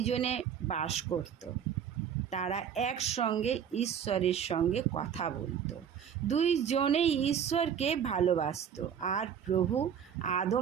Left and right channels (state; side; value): quieter; left; 8.4 dB